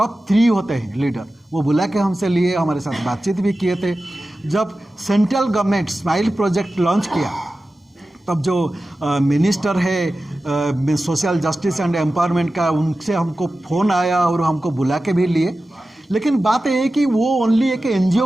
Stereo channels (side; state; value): both; normal; correlation 0.95